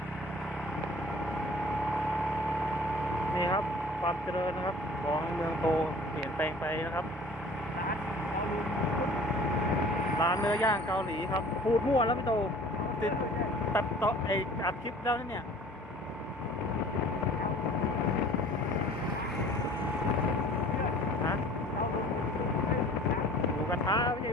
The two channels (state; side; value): normal; both; correlation 0.47